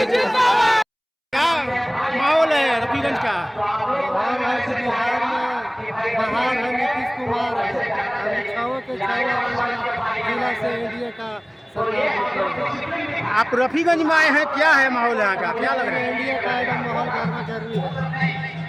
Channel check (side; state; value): both; identical; correlation 1.00